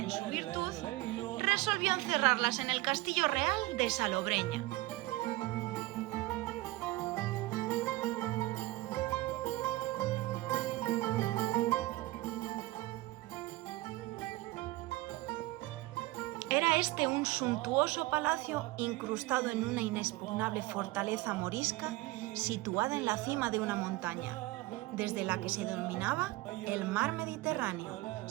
su virtud, resolvió encerrarlas en el castillo real de Salobreña. Era este un suntuoso palacio incrustado en una inexpugnable fortaleza morisca situada en la cima de una montaña, desde la que se dominaba el mar Mediterráneo,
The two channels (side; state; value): left; quieter; 19.1 dB